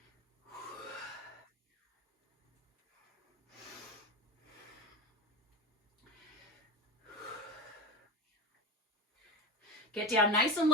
Get down nice and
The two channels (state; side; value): normal; both; correlation 0.21